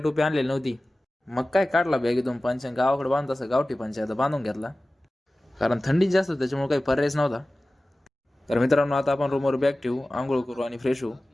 आणलेली नव्हती. मग काय काढला बॅगेतून पंच गावाकडे बांधत असं गावठी पंच आता बांधून घेतला. कारण थंडी जास्त त्याच्यामुळे काही पर्यायच नव्हता. तर मित्रांनो आता आपण रूमवर बॅग ठेवू, आंघोळ करू आणि फ्रेश होऊ.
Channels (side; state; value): both; normal; correlation 0.97